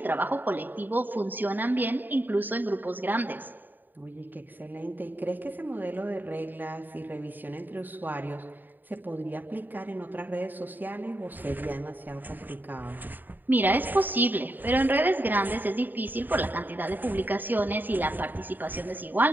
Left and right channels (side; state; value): left; late; 0.090 ms